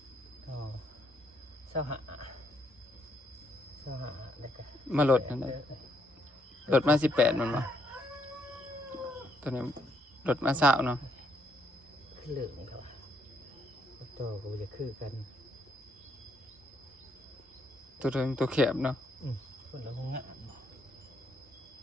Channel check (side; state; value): both; normal; correlation 0.73